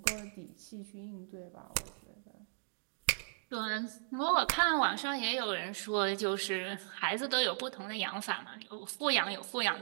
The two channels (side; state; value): left; silent; digital silence